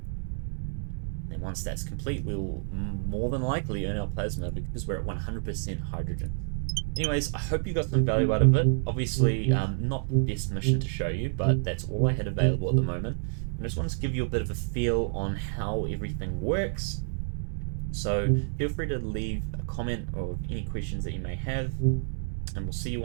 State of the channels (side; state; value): left; silent; 59 dB below the other